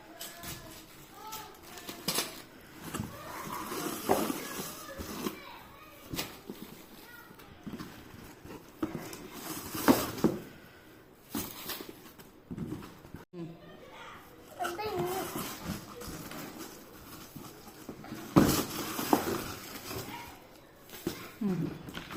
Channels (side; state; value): both; identical; correlation 1.00